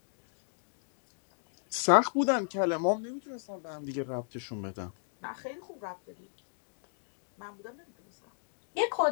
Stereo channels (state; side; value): silent; right; digital silence